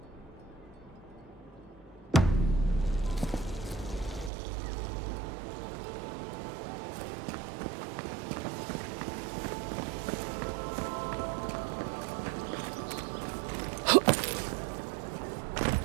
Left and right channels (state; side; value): drops out; left; at 4.3 s